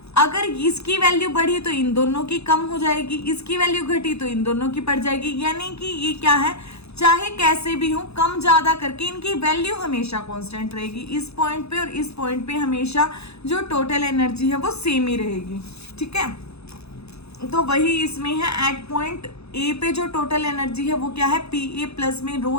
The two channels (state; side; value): late; right; 0.79 ms